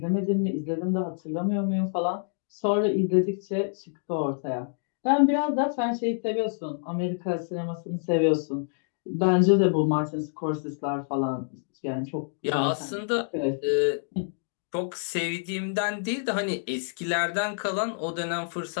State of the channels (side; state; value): right; silent; digital silence